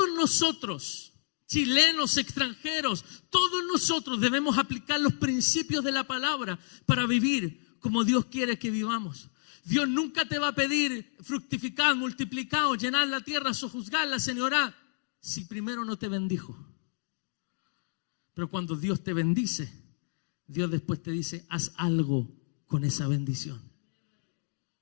nosotros, chilenos, extranjeros, todos nosotros debemos aplicar los principios de la palabra para vivir como Dios quiere que vivamos. Dios nunca te va a pedir fructificar, multiplicar, o llenar la tierra, sojuzgarla, señorar, si primero no te bendijo. Pero cuando Dios te bendice, Dios después te dice, haz algo con esa bendición.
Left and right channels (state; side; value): silent; right; digital silence